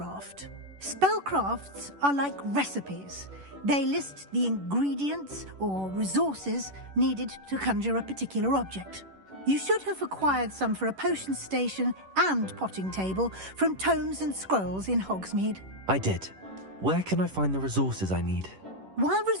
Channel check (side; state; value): left; late; 11 ms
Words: Spellcrafts are like recipes. They list the ingredients or resources needed to conjure a particular object. You should have acquired some for a potion station and potting table from tomes and scrolls in Hogsmeade. I did. Where can I find the resources I need? While